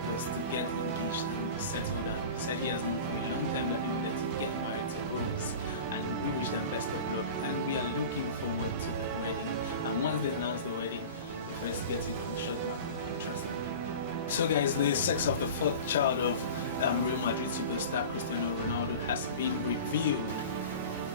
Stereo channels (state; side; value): inverted; both; correlation -0.35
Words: was to get engaged and settle down. He said he has known for a long time that he wanted to get married to Rose, and we wish them best of luck, and we are looking forward to the wedding. And once they announce the wedding, we first get it on Shotblac Weekly, trust me. So guys, the sex of the fourth child of Real Madrid superstar Cristiano Ronaldo has been revealed.